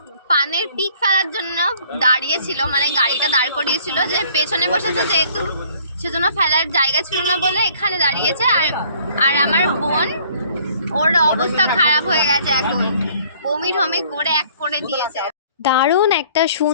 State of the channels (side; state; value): both; inverted; correlation -0.57